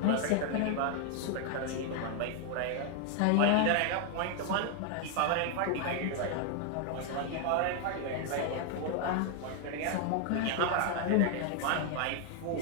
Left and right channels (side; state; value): both; different; correlation 0.00